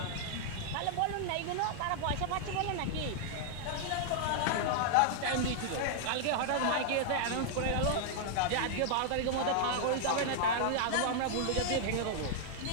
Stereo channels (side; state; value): both; different; correlation -0.01